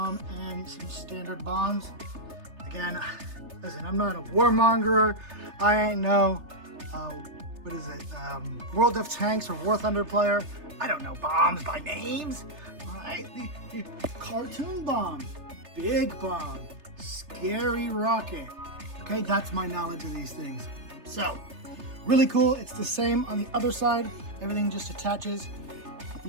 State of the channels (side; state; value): left; late; 3.3 ms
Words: and some standard bombs. Again, listen, I'm not a warmonger. I ain't no, what is it, World of Tanks or War Thunder player. I don't know bombs by names. All right, the cartoon bomb, big bomb, scary rocket. Okay, that's my knowledge of these things. So, really cool. It's the same on the other side. Everything just attaches